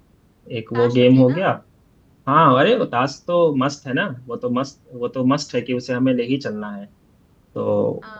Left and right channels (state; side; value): identical; both; correlation 1.00